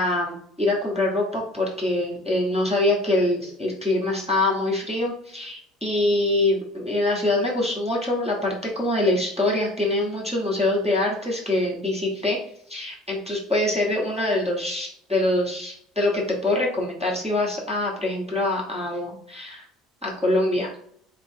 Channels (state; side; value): normal; both; correlation 0.48